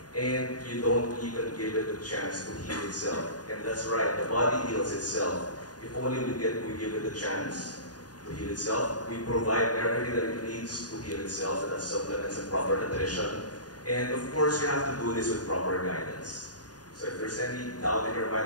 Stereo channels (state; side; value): late; right; 0.69 ms